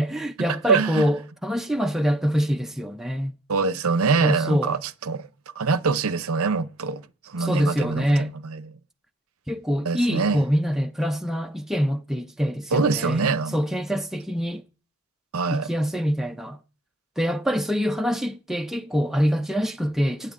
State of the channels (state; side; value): normal; both; correlation 0.62